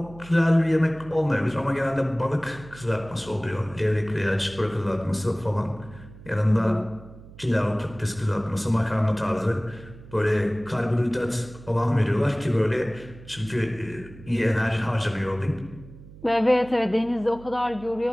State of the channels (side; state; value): right; noise; hum, 19 dB below the sound